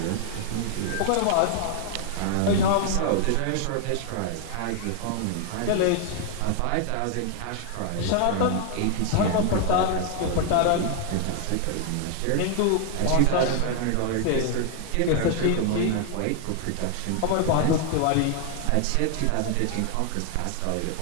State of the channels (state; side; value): different; both; correlation 0.00